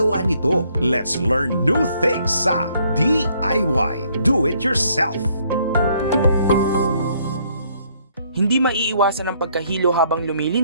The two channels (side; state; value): both; inverted; correlation -0.67